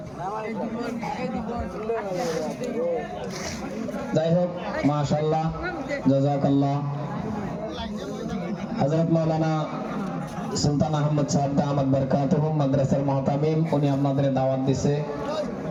যাই হোক, মাশাআল্লাহ, জাযাকাল্লাহ। হযরত মাওলানা সুলতান আহমদ সাহেব দামাত বরকাতুহুম মাদ্রাসার মুহতামিম, উনি আপনাদের দাওয়াত দিছে,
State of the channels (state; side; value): identical; both; correlation 1.00